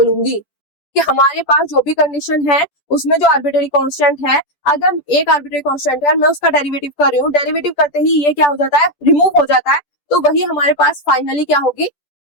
कि हमारे पास जो भी कंडीशन है उसमें जो आर्बिट्रेरी कांस्टेंट है, अगर एक आर्बिट्रेरी कांस्टेंट है मैं उसका डेरिवेटिव कर रही हूँ, डेरिवेटिव करते ही ये क्या हो जाता है, रिमूव हो जाता है, तो वही हमारे पास फाइनली क्या होगी,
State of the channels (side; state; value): right; late; 10 ms